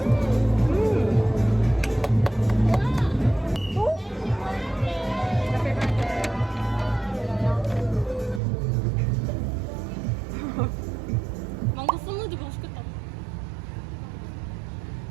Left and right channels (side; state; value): left; drops out; at 8.4 s